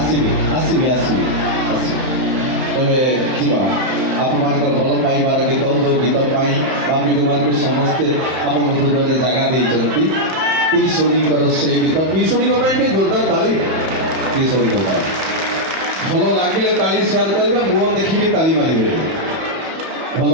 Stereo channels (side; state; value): left; late; 31 ms